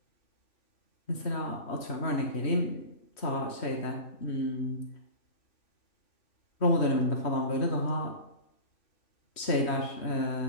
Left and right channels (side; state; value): right; late; 3.1 ms